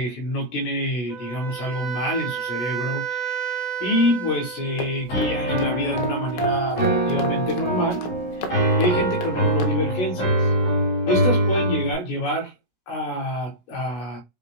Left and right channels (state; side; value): late; right; 16 ms